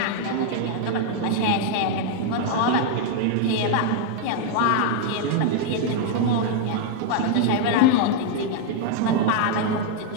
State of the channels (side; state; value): both; different; correlation 0.00